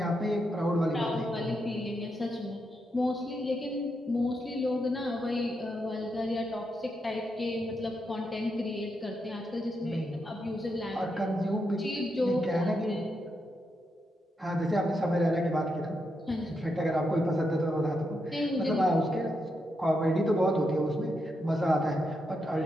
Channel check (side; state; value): both; normal; correlation 0.83